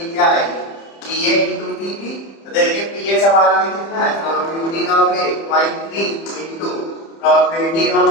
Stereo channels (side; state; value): right; late; 30 ms